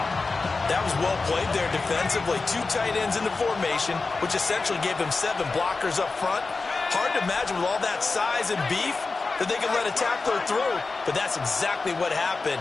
That was well played there defensively. 2 tight ends in the formation, which essentially gave them 7 blockers up front. Hard to imagine with all that size and beef that they could let a tackler through, but that's exactly what happened.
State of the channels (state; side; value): quieter; right; 3.9 dB